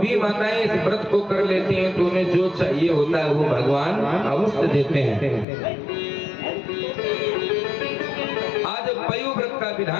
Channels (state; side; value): drops out; right; at 5.5 s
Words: माताएं इस व्रत को कर लेती हैं तो उन्हें जो चाहिए होता है वो भगवान अवश्य देते हैं। आज पयोव्रत का